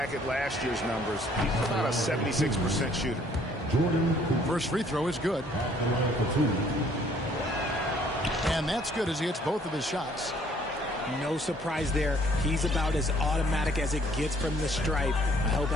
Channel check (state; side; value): normal; both; correlation 0.61